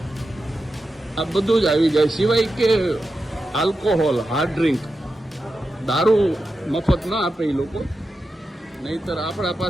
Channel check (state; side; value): normal; both; correlation 0.90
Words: આ બધું જ આવી જાય. સિવાય કે આલ્કોહોલ, હાર્ડ ડ્રિંક, દારૂ મફત ના આપે એ લોકો. નહીતર આપણા